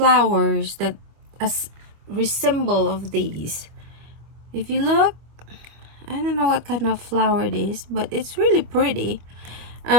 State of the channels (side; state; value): left; late; 25 ms